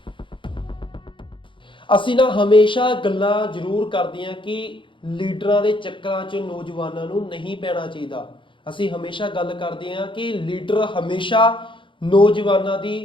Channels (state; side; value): late; right; 0.24 ms